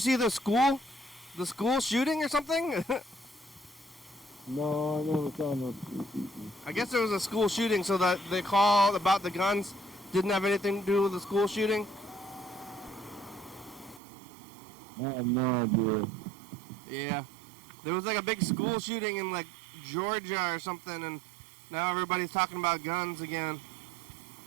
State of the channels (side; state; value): left; drops out; at 14.0 s